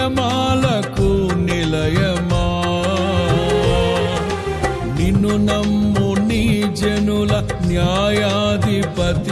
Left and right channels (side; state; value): both; identical; correlation 1.00